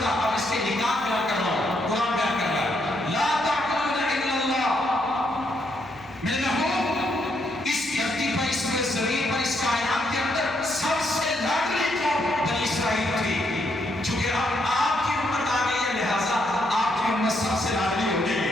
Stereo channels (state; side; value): noise; left; hum, 26 dB below the sound